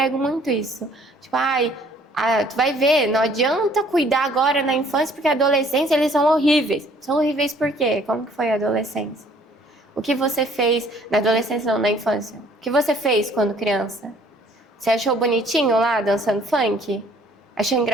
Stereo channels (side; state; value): both; normal; correlation 0.59